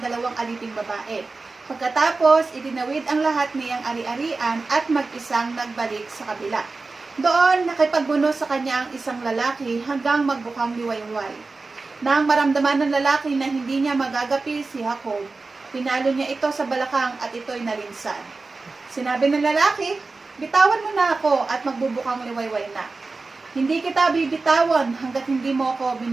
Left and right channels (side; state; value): left; quieter; 3.8 dB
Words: aliping babae. Pagkatapos, itinawid ang lahat niyang ari-arian at mag-isang nagbalik sa kabila. Doon, nakipagbuno sa kanya ang isang lalaki hanggang magbukang liwayway. Nang maramdaman ng lalaki na hindi niya magagapi si Jacob, pinalo niya ito sa balakang at ito'y nalinsan. Sinabi ng lalaki, "Bitawan mo na ako at magbubukang liwayway na. Hindi kita bibitawan hanggat hindi mo ako